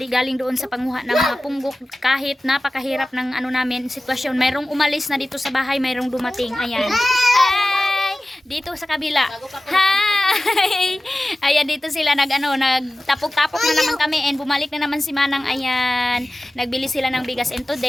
galing doon sa panguha ng mga punggok. Kahit napakahirap ng ano namin, sitwasyon. Mayroong umalis na dito sa bahay, mayroong dumating. Ayan. Hi! Dito sa kabila. Hi! Ayan, dito sila nagtapok-tapok na naman kami and bumalik na naman si Manang. Ayan. Nagbili sila ng bigas and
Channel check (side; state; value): both; normal; correlation 0.96